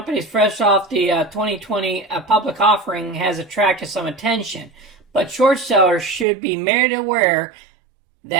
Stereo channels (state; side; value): drops out; left; at 6.2 s